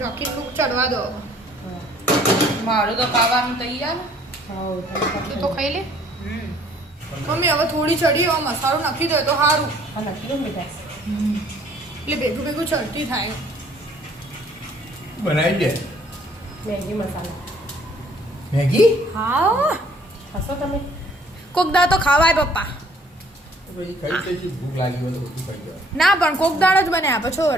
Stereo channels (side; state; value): both; normal; correlation 0.59